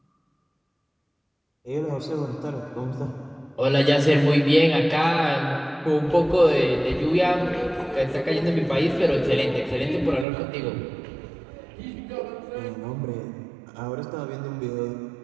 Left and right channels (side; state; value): left; drops out; at 10.2 s